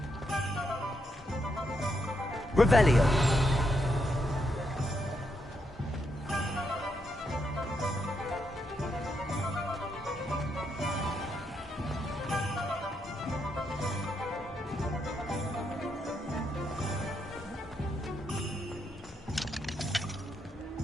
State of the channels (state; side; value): normal; both; correlation 0.80